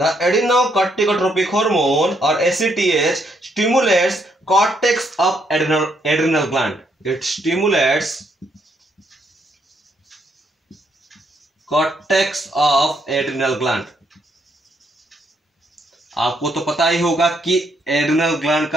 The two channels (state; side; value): normal; both; correlation 0.73